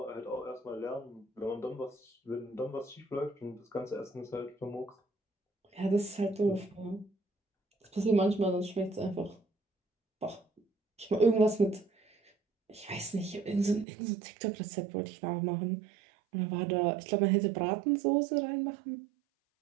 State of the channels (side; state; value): left; drops out; at 13.9 s